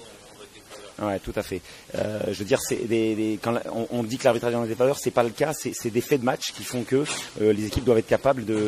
Ouais, tout à fait. Je veux dire, quand on dit que l'arbitrage est en défaveur, c'est pas le cas. C'est des faits de match qui font que les équipes doivent être capables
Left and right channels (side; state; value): both; identical; correlation 1.00